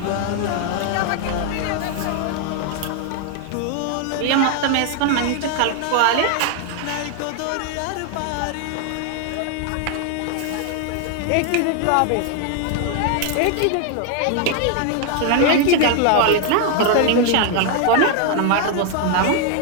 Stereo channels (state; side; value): different; both; correlation 0.00